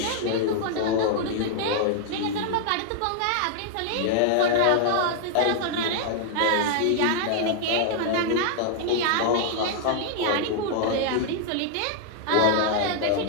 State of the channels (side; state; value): both; different; correlation -0.01